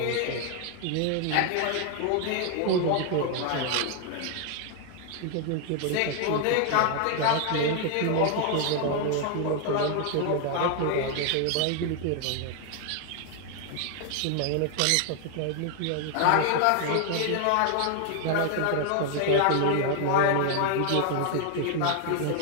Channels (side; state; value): both; different; correlation 0.00